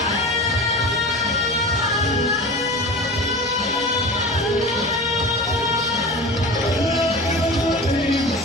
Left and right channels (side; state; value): both; normal; correlation 0.33